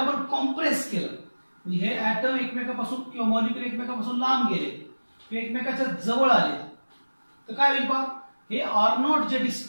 आपण कॉम्प्रेस केलं, म्हणजे हे ॲटम एकमेकापासून किंवा मॉलिक्यूल एकमेकापासून लांब गेले किंवा एकमेकाच्या जवळ आले तर काय होईल पहा, हे आर नॉट जे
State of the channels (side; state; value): both; inverted; correlation -1.00